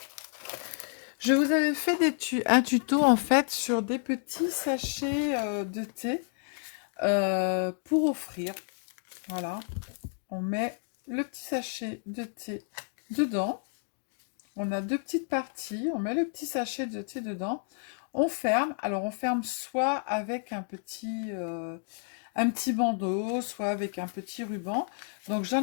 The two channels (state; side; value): silent; right; 57 dB below the other